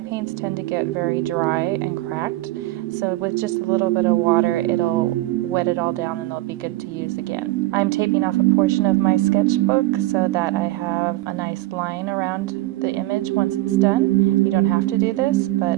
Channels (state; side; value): quieter; left; 17.9 dB